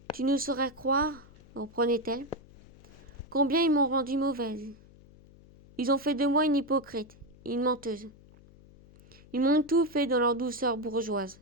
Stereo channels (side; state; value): left; noise; hum, 24 dB below the sound